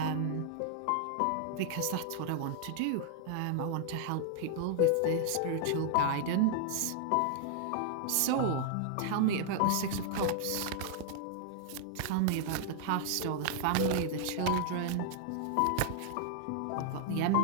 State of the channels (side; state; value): both; different; correlation -0.01